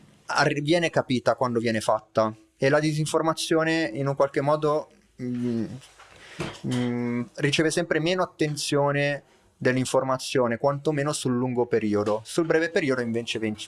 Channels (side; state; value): both; identical; correlation 1.00